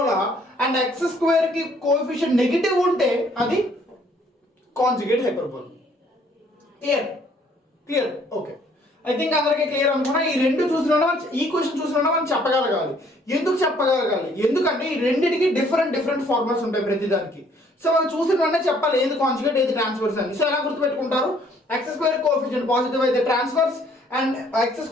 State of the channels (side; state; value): both; normal; correlation 0.62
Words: అండ్ x² కి కోఎఫిషియంట్ నెగిటివ్ ఉంటే అది conjugate hyperbola. Clear okay, I think అందరికీ క్లియర్ అనుకున్నా. ఈ రెండు చూసినా ఈక్వేషన్ చూసినా మనం చెప్పగలగాలి. ఎందుకు చెప్పగలగాలి? ఎందుకంటే ఈ రెండింటికి డిఫరెంట్ ఫార్ములాస్ ఉంటాయి ప్రతిదానికి. సో మనం చూసిన వెంటనే చెప్పాలి ఏది కాంజుగేట్ ఏది ట్రాన్స్ఫర్స్ అని. సో ఎలా గుర్తుపెట్టుకుంటారు? x² కోఎఫిషియంట్ పాజిటివ్ అయితే transverse, and x²